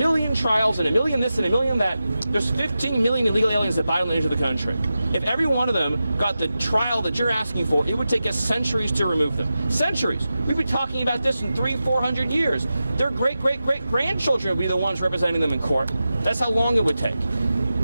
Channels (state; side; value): inverted; both; correlation -0.92